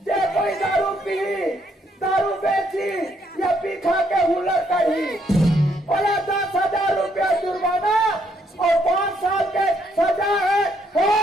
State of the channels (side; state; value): both; normal; correlation 0.72